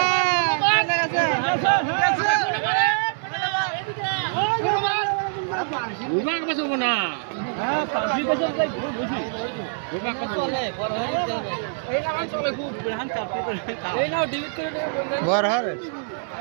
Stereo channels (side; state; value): left; silent; digital silence